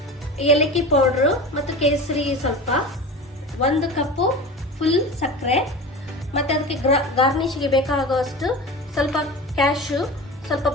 ಏಲಕ್ಕಿ ಪೌಡ್ರು ಮತ್ತು ಕೇಸರಿ ಸ್ವಲ್ಪ, 1 ಕಪ್ಪು ಫುಲ್ ಸಕ್ಕರೆ, ಮತ್ತು ಅದಕ್ಕೆ ಗಾರ್ನಿಷ್ಗೆ ಬೇಕಾಗುವಷ್ಟು ಸ್ವಲ್ಪ ಕ್ಯಾಶು, ಸ್ವಲ್ಪ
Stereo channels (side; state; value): both; normal; correlation 0.31